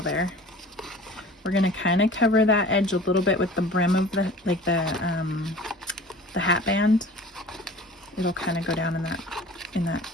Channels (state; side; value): normal; both; correlation 0.42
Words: there. We're going to kind of cover that edge a little bit with the brim of the, like the hat band. It'll kind of go down in that